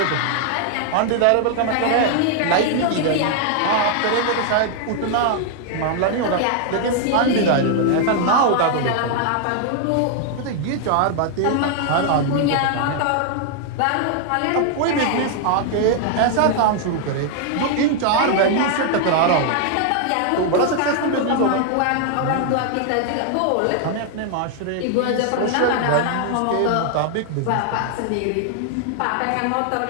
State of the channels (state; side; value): different; both; correlation 0.00